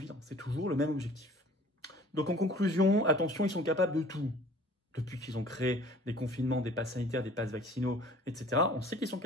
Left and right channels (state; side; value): normal; both; correlation 0.50